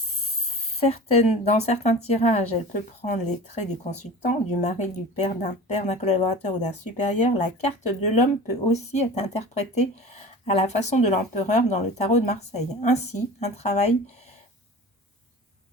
certains tirages, elle peut prendre les traits du consultant, du mari, du père, d'un collaborateur ou d'un supérieur, la carte de l'homme peut aussi être interprétée à la façon de l'empereur dans le tarot de Marseille. Ainsi, un travail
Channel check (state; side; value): normal; both; correlation 0.37